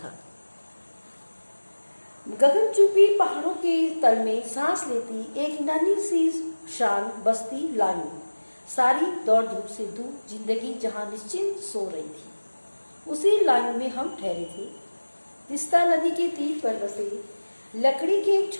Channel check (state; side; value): inverted; both; correlation -1.00